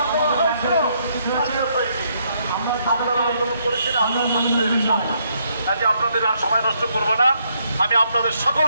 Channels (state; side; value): inverted; both; correlation -0.73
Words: আপনাদের আর সময় নষ্ট করবো না। আমি আপনাদের